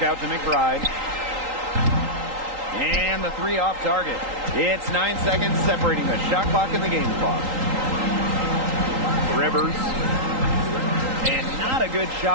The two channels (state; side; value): late; left; 3.8 ms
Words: out to McBride. And the three off target. It's 9 seconds separating the shot clock and the game clock. Rivers. And not a good